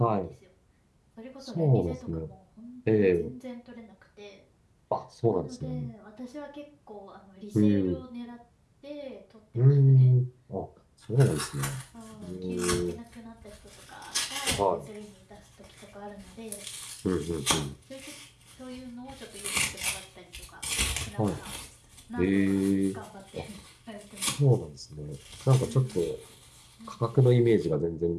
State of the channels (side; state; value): both; identical; correlation 1.00